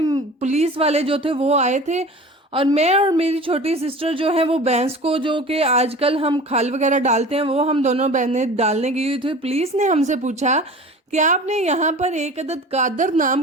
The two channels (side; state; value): both; normal; correlation 0.39